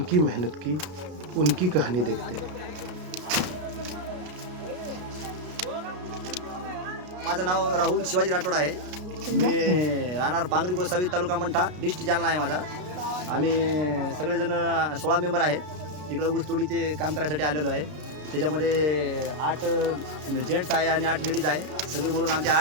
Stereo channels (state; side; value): late; left; 33 ms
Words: मेहनत की, उनकी कहानी देखते हैं। माझं नाव राहुल शिवाजी राठोड आहे। मी राहणार पांगरी गोसावी तालुका मंठा डिस्ट्रिक्ट जालना आहे माझा। आम्ही सगळेजण 16 मेंबर आहे। इकडे ऊसतोडीचे काम करायसाठी आलेलो आहे। त्याच्यामध्ये 8 जेंट्स आहे आणि 8 लेडीज आहे। सगळे मिळून आमचे